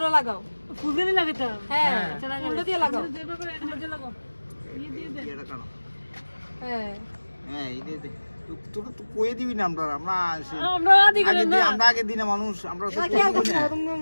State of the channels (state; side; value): inverted; both; correlation -1.00